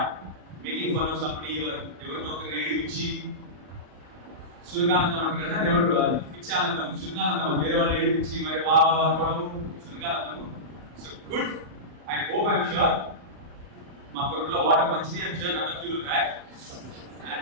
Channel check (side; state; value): left; late; 39 ms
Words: making fun of somebody or ఎవరినో ఒక రేడి పిచ్చి సురకానందం అంటారు కదా, నెవరు రాదు పిచ్చి ఆనందం, సురకానందం అది వేరే వాళ్ళు ఏడి పిచ్చి మరి వా అనుకోవడము సురకానందము. So good. I hope, I'm sure, మా కొడుకులో వాటర్ మంచిది. I'm sure none of you will rag.